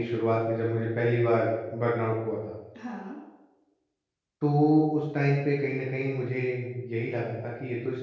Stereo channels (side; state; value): both; identical; correlation 1.00